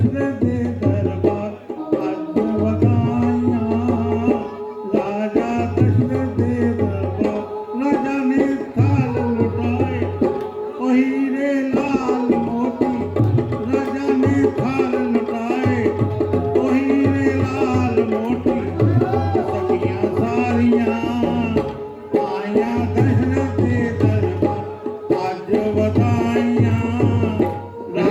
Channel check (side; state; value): both; identical; correlation 1.00